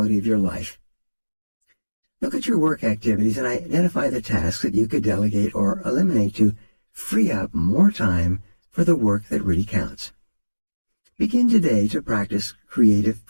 of your life. Look at your work activities and identify the tasks that you could delegate or eliminate to free up more time for the work that really counts. Begin today to practice creative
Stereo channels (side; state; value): both; inverted; correlation -1.00